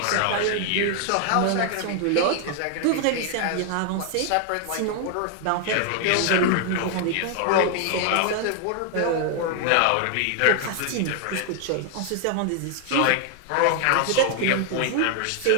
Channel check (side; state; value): both; different; correlation 0.00